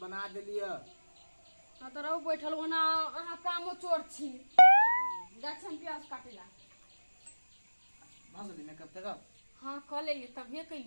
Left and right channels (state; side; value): inverted; both; correlation -1.00